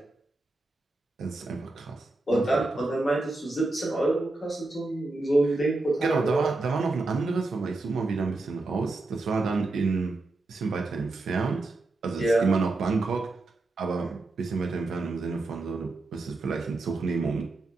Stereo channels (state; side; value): quieter; left; 3.1 dB